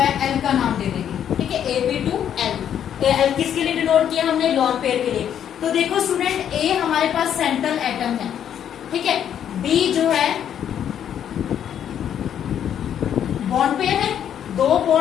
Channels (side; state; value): right; quieter; 9.4 dB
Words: L का नाम दे देंगे, ठीक है, AB2L। L किसके लिए डिनोट किया हमने, लोन पेयर के लिए। तो देखो स्टूडेंट, A हमारे पास सेंट्रल एटम है, ठीक है। B जो है बॉन्ड पेयर है, दो